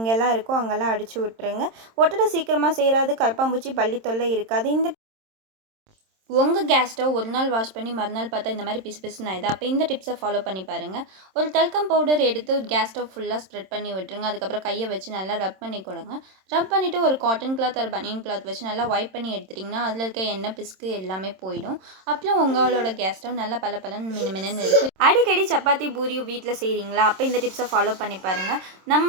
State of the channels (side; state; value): left; late; 27 ms